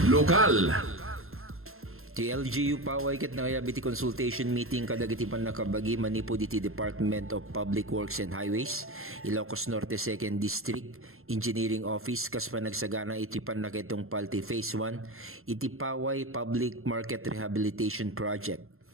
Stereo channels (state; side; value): late; left; 0.61 ms